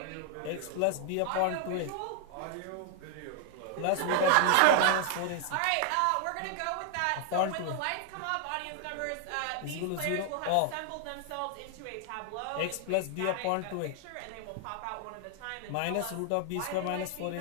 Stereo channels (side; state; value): both; different; correlation 0.00